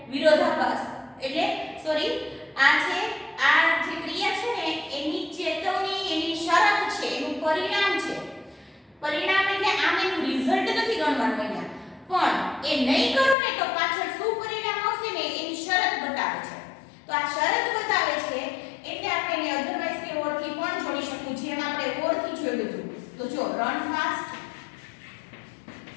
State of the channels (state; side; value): drops out; right; at 13.4 s